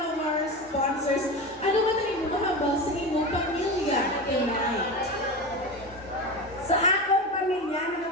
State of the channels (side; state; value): both; normal; correlation 0.24